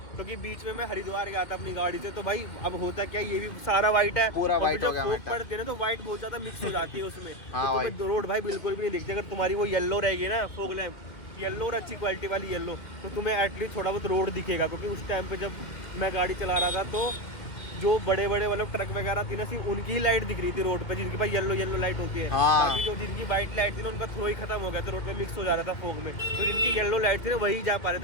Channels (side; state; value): right; late; 2.7 ms